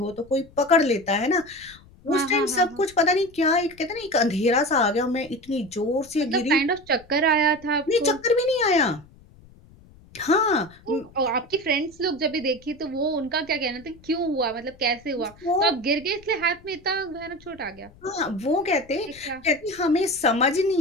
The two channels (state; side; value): noise; left; rumble, 25 dB below the sound